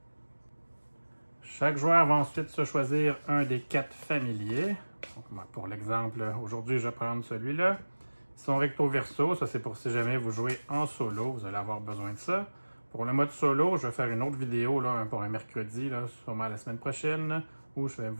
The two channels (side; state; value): both; inverted; correlation -1.00